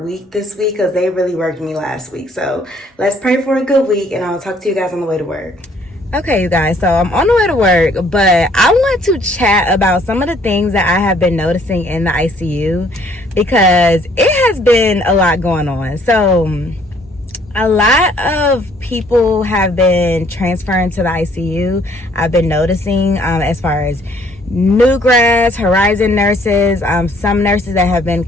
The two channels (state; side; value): normal; both; correlation 0.62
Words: week this week, because they really worked me last week. So let's pray for a good week, and I'll talk to you guys on the way to work. Okay, you guys, so I'm on the way to work, but I want to chat about some of the things that I have been noticing in the ICU, because it has been a lot going on. So a lot of people have been transferring to the ICU. I've been noticing as far as new grads, horizon nurses, some nurses that have been